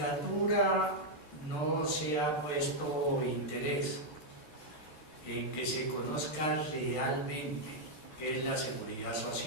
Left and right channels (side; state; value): right; late; 13 ms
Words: no se ha puesto interés en que se conozca realmente qué es la seguridad